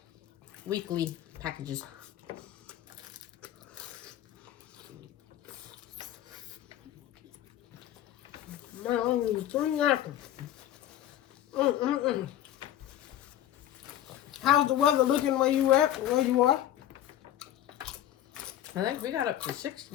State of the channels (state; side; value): quieter; right; 12.1 dB